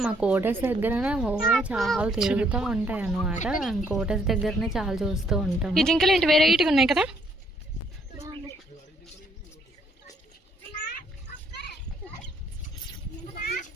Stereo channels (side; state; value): both; normal; correlation 0.68